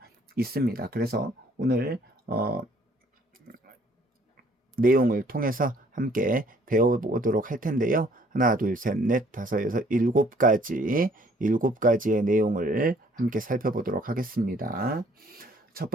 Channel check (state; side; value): normal; both; correlation 0.60